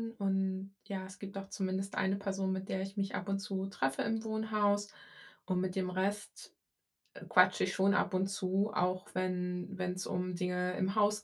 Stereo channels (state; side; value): identical; both; correlation 1.00